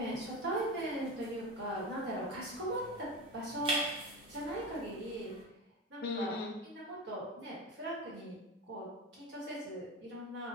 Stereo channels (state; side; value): normal; both; correlation 0.24